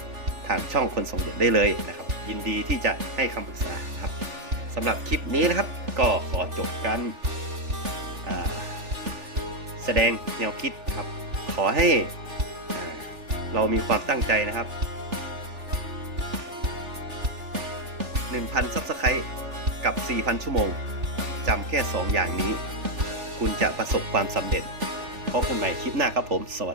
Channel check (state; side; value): late; left; 3.4 ms